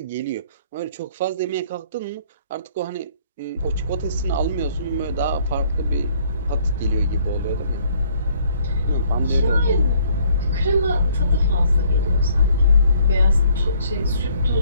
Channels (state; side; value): inverted; both; correlation -0.62